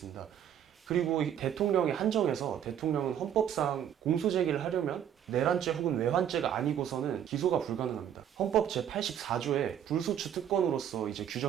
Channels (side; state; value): left; quieter; 9.7 dB